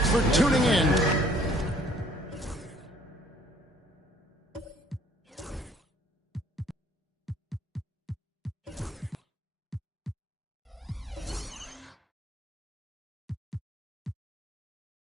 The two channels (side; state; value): both; normal; correlation 0.59